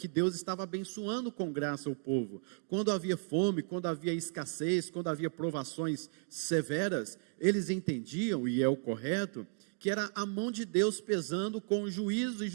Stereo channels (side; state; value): left; silent; 55 dB below the other